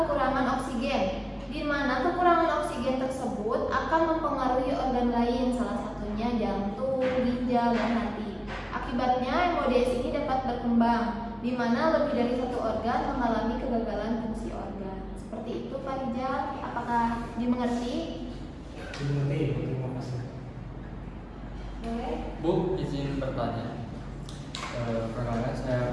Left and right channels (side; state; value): both; identical; correlation 1.00